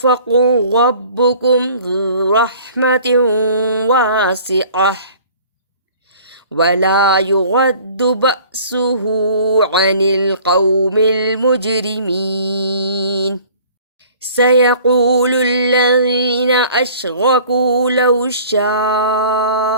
ربكم ذو رحمة واسعة ولا يرد بأسه عن القوم المجرمين. سيقول الذين أشركوا لو شاء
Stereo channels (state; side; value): inverted; both; correlation -0.49